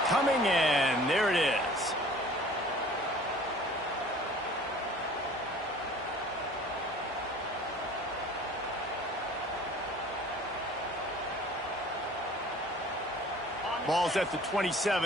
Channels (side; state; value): both; normal; correlation 0.47